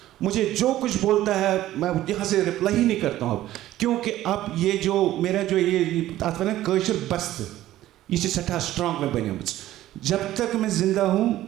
मुझे जो कुछ बोलता है मैं यहाँ से रिप्लाई ही नहीं करता हूँ अब, क्योंकि अब ये जो मेरा जो ये आता है ना कल्चर बस्त, ये सठा स्ट्रांग में बने। जब तक मैं जिंदा हूँ,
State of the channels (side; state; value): left; quieter; 14.3 dB